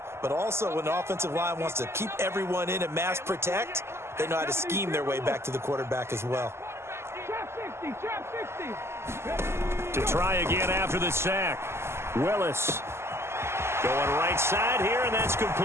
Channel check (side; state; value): left; late; 0.12 ms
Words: but also when the offensive line wants to keep everyone in and mass protect, they know how to scheme their way back to the quarterback as well. Trap 60. To try again after the sack. Willis going right side here, and that's complete.